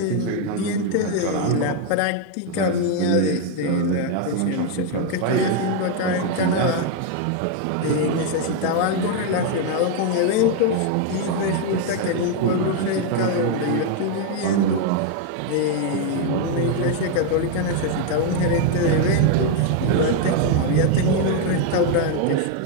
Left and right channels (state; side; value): different; both; correlation 0.01